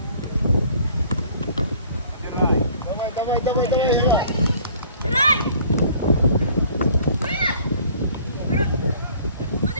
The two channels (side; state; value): both; inverted; correlation -0.54